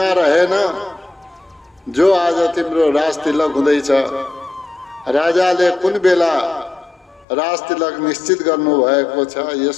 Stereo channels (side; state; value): right; drops out; at 7.2 s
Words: रहेन। जो आज तिम्रो राज तिलक हुँदैछ, राजाले कुन बेला राज तिलक निश्चित गर्नु भएको छ। यस